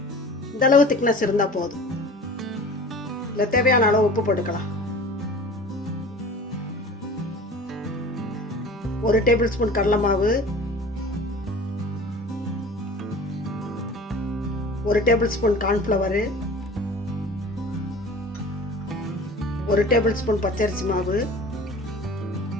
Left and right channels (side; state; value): both; normal; correlation 0.41